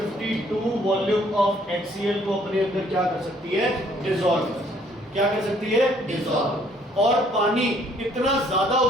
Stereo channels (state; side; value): normal; both; correlation 0.63